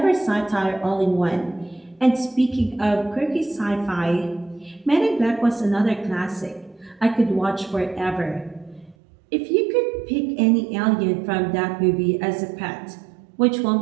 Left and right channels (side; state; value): left; drops out; at 9.0 s